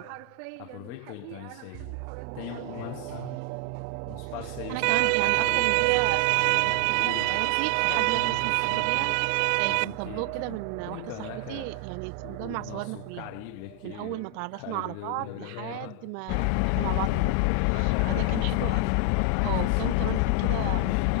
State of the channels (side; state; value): both; different; correlation 0.00